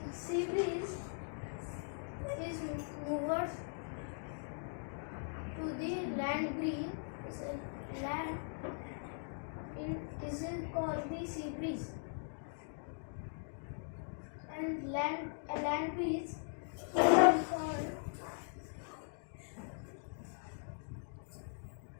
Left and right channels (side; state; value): right; silent; digital silence